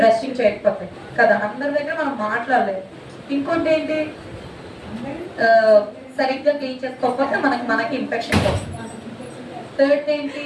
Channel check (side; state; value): both; identical; correlation 1.00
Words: చేయకపోతే కదా. అందరి దగ్గర మనం మాట్లాడలేదు. ఇంకోటి ఏంటి, సరిగ్గా క్లీన్ చేసుకోకపోతే మనకి ఇన్ఫెక్షన్ వస్తుంది. థర్డ్ ఏంటి,